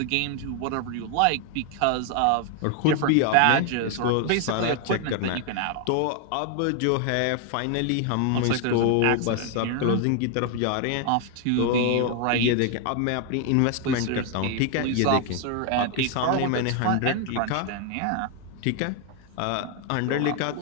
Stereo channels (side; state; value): both; different; correlation 0.00